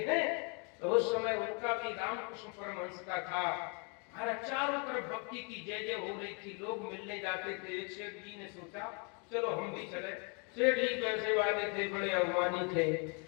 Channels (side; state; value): right; quieter; 35.8 dB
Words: हैं, तो उस समय उनका भी रामकृष्ण परमहंस का था। महाराज चारों तरफ भक्ति की जय जय हो रही थी, लोग मिलने जाते थे। एक सेठ जी ने सोचा चलो हम भी चले। सेठ जी पैसे वाले थे, बड़े अभिमानी थे,